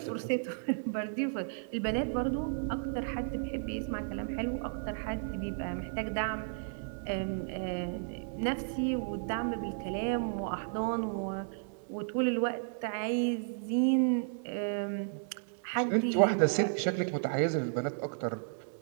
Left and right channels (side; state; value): left; silent; digital silence